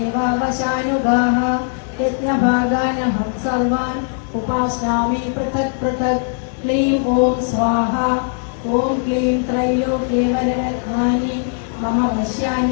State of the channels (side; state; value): right; silent; digital silence